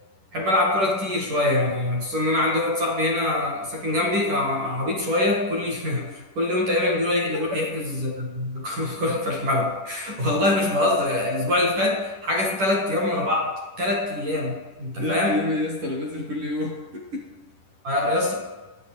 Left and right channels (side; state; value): left; late; 10 ms